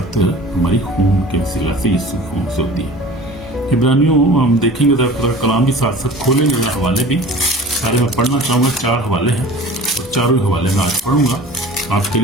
हमारी खून के वसीला से, यीशु खून से होती है। इब्रानियों हम देखेंगे खुदा का कलाम भी साथ साथ खोलेंगे, मैं हवाले भी सारे मैं पढ़ना चाहूँगा। 4 हवाले हैं और चारों हवाले में आज पढ़ूंगा आपके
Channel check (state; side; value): normal; both; correlation 0.41